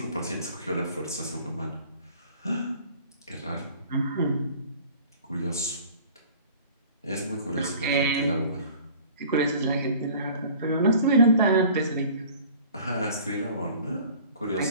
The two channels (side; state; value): both; inverted; correlation -0.47